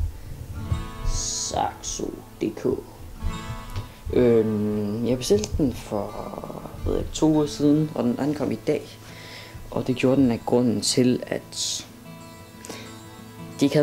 Saxo.dk. Jeg bestilte den for 2 uger siden, og den ankom i dag. Og det gjorde den af grunden til, at de ikke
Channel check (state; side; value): identical; both; correlation 1.00